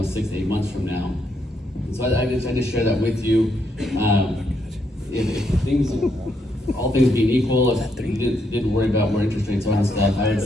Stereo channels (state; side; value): normal; both; correlation 0.77